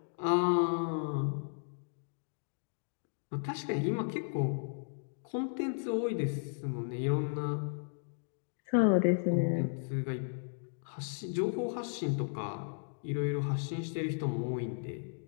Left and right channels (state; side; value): silent; right; digital silence